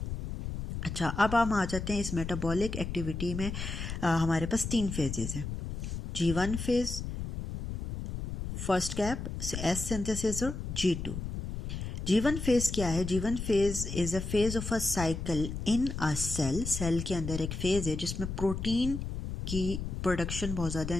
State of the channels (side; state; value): left; noise; rumble, 5 dB below the sound